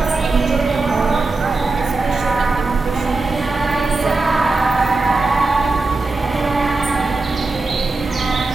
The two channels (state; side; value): quieter; left; 3.4 dB